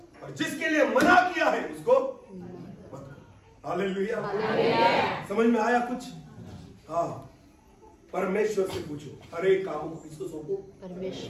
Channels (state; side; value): identical; both; correlation 1.00